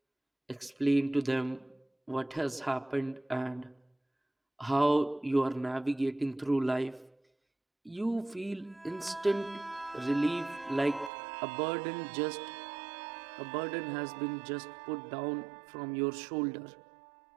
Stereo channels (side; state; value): left; drops out; at 11.1 s